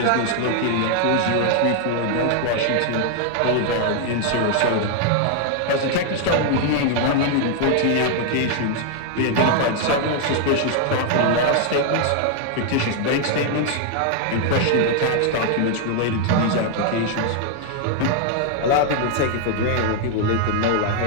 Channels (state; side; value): different; both; correlation 0.00